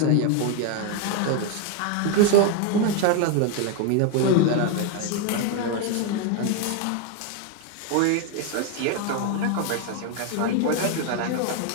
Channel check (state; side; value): different; both; correlation 0.01